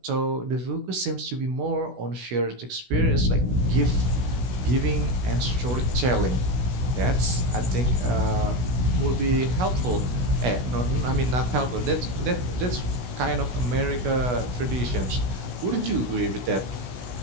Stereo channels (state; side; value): late; left; 16 ms